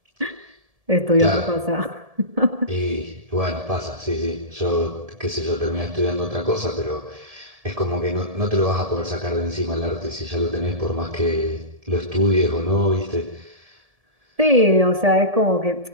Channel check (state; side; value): late; left; 1.7 ms